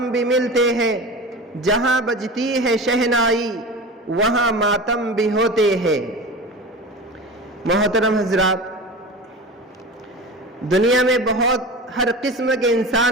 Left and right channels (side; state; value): both; normal; correlation 0.31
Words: بھی ملتے ہیں. جہاں بجتی ہے شہنائی وہاں ماتم بھی ہوتے ہیں. محترم حضرات، دنیا میں بہت ہر قسم کے